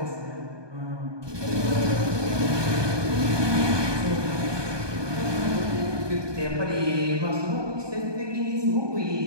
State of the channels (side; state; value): left; late; 1.2 ms